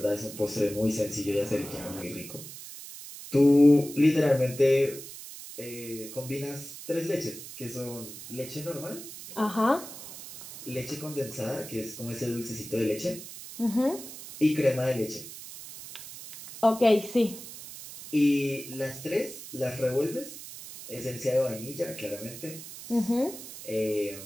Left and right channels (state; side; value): noise; right; hiss, 13 dB below the sound